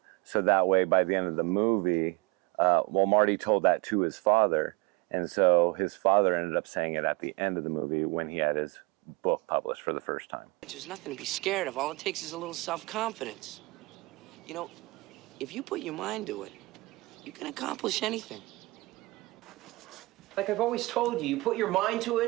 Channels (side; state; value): left; quieter; 23.6 dB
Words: So that way, by the end of the movie, Marty told that to his father. And so his father ended up saying it at the end of the movie when he had his book published for the first time. There's nothing to be scared of. All it takes is a little self-confidence. If you put your mind to it, you can accomplish anything. Like I've always told you put your mind to